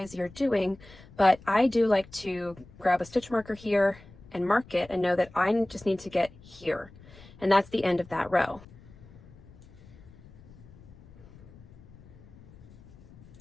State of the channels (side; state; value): left; noise; rumble, 21 dB below the sound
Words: you're doing. But I do like to grab a stitch marker here and mark it and know that I just need to get here. And that's the end of that row.